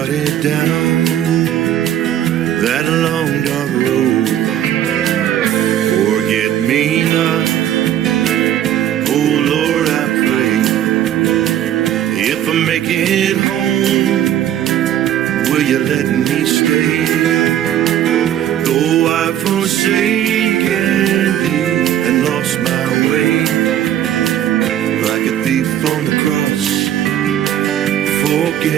down that long dark road. Forget me not, oh Lord, I pray. If I make it home, will you let me stay? Though I've forsaken thee and lost my way, like a thief on the cross,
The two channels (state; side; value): quieter; left; 11.0 dB